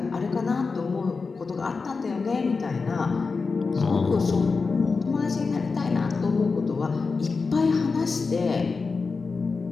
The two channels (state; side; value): quieter; right; 4.5 dB